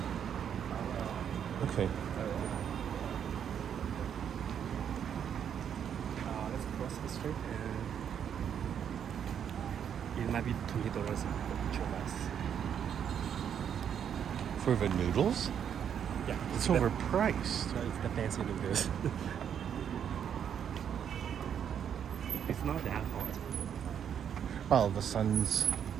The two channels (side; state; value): left; quieter; 8.5 dB